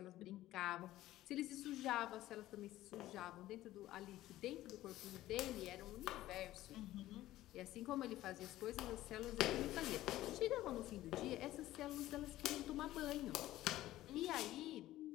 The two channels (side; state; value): right; quieter; 15.2 dB